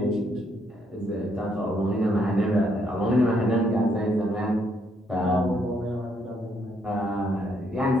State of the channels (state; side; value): normal; both; correlation 0.72